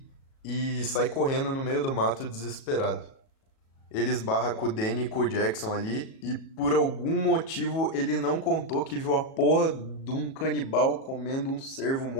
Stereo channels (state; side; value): late; right; 37 ms